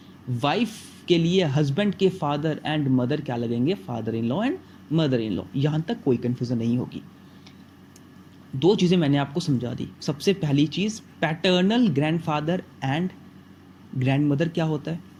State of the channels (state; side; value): identical; both; correlation 1.00